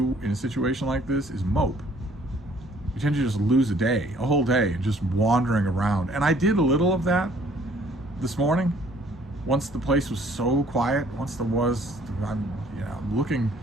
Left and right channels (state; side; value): normal; both; correlation 0.59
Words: in a situation like this is mope. You tend to just lose a whole day, just wandering around. And I did a little of that this morning. Once the place was so quiet, I'm looking